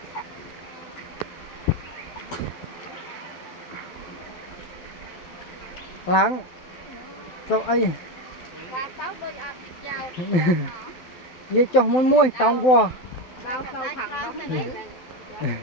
ឡើងទៅអីបាទទៅដូចអត់ចោលនិយាយចុះមួយតងវល់ដល់ទៅខាងនោះនេះ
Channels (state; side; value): late; right; 12 ms